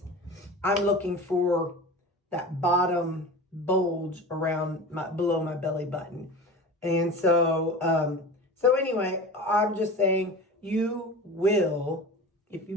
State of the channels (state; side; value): normal; both; correlation 0.33